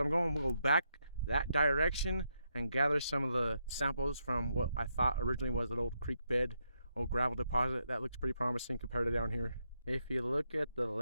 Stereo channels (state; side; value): inverted; both; correlation -0.81